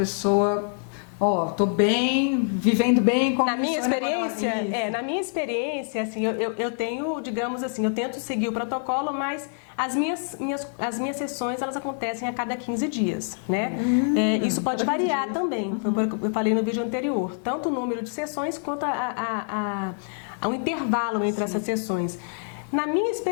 tô bem, vivendo bem. Na minha experiência, assim, eu tenho, digamos assim, eu tento seguir o protocolo, mas as minhas sessões, elas acontecem a cada 15 dias, né? Isso pode variar também, foi o que eu falei no vídeo anterior, tanto o número de sessões quanto o intervalo entre essas sessões. Na minha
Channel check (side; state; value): right; silent; 61 dB below the other